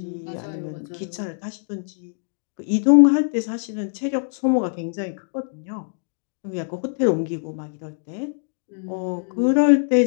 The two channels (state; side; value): silent; right; digital silence